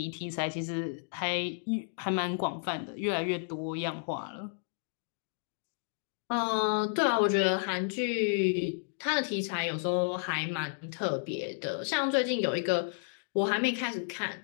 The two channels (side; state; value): right; silent; digital silence